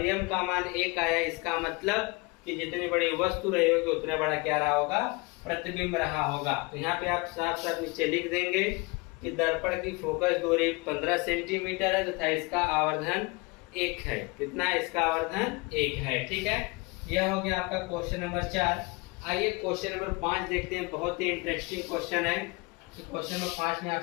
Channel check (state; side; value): quieter; right; 26.7 dB